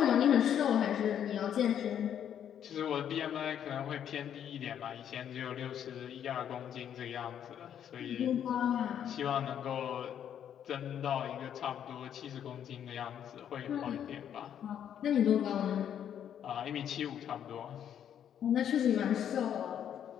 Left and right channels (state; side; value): quieter; right; 9.4 dB